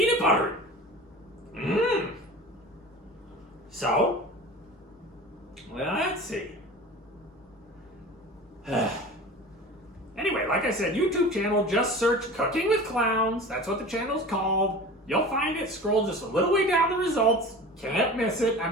buttery. So, well, let's see. Anyway, like I said, YouTube channel, just search Cooking with Clowns. That's what the channel's called. You'll find it. Scroll just a little way down the results. Can't miss it. I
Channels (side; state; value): both; normal; correlation 0.36